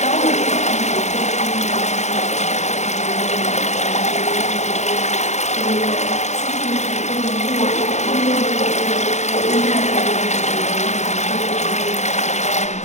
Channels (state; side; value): late; right; 0.33 ms